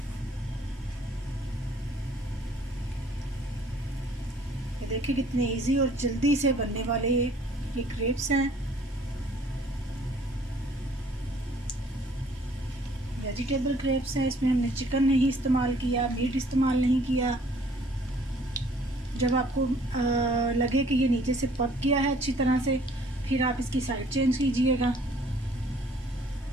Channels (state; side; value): normal; both; correlation 0.58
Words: ये देखिए कितने इजी और जल्दी से बनने वाले ये क्रेप्स हैं। वेजिटेबल क्रेप्स हैं, इसमें हमने चिकन नहीं इस्तेमाल किया, मीट इस्तेमाल नहीं किया। जब आपको लगे कि ये नीचे से पक गया है अच्छी तरह से, फिर आप इसकी साइड चेंज कीजिएगा।